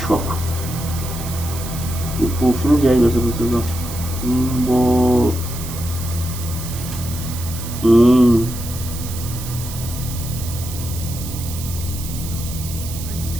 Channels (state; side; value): noise; right; hiss, 10 dB below the sound